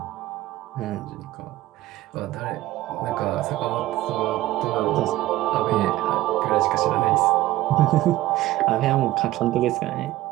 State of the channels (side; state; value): left; quieter; 16.0 dB